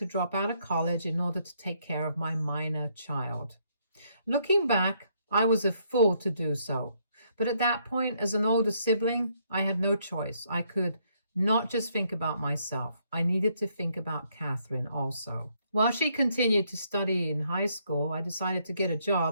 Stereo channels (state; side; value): inverted; both; correlation -0.71